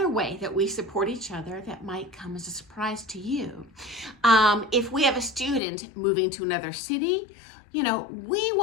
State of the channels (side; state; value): right; drops out; at 5.6 s